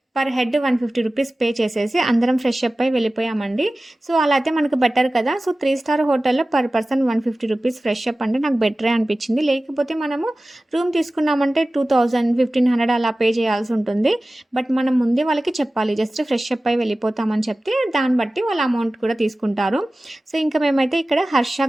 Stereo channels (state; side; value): normal; both; correlation 0.97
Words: పర్ హెడ్ 150 రూపీస్ పే చేసేసి అందరం ఫ్రెష్ అప్ అయి వెళ్ళిపోయామండి. సో, అలా అయితే మనకు బెటర్ కదా! సో, 3 స్టార్ హోటల్‌లో per person 150 rupees fresh up అంటే నాకు బెటరే అనిపించింది. లేకపోతే మనము రూమ్ తీసుకున్నామంటే 2000, 1500 అలా పే చేయాల్సి ఉంటుంది. బట్ మనం ముందే వాళ్ళకి చెప్పాలి. జస్ట్ ఫ్రెష్ అప్ అయి వెళ్ళిపోతామని చెప్తే దాన్ని బట్టి వాళ్ళ అమౌంట్ కూడా తీసుకుంటారు. సో, ఇంకా మేమైతే ఇక్కడ హర్ష